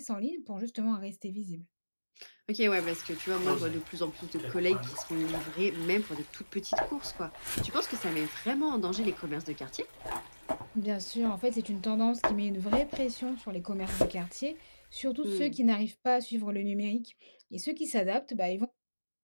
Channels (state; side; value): inverted; both; correlation -1.00